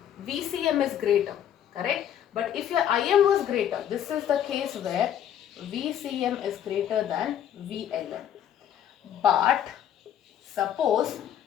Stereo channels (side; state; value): right; quieter; 10.1 dB